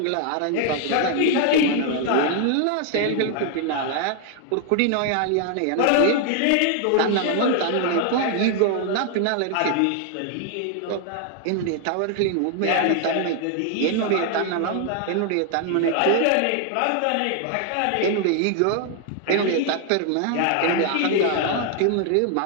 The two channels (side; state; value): both; different; correlation 0.00